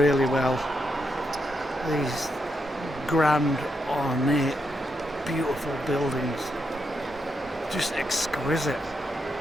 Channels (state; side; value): normal; both; correlation 0.82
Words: well, these grand, ornate, beautiful buildings, just exquisite.